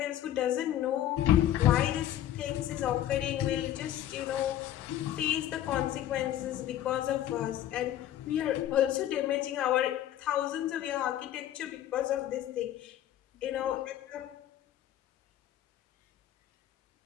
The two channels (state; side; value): quieter; right; 12.2 dB